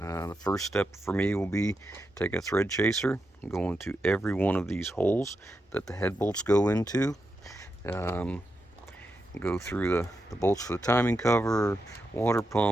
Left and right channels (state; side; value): normal; both; correlation 0.86